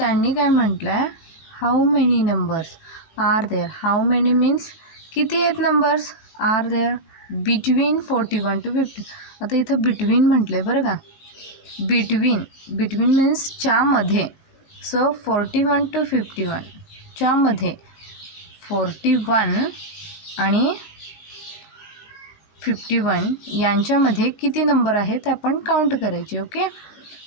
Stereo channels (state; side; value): late; right; 18 ms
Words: काय म्हटलं आहे, how many numbers are there. How many means किती आहेत numbers, are there between 41 to 50. आता इथं बिटवीन म्हटलं आहे बरं का, बिटवीन, बिटवीन मीन्स च्यामध्ये. सो 41 to 51 च्यामध्ये 41 आणि 51 यांच्यामध्ये किती नंबर आहेत ते आपण काउंट करायचे. ओके,